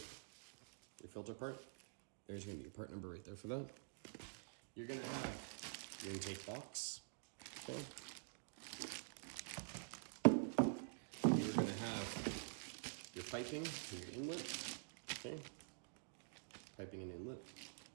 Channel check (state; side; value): silent; left; digital silence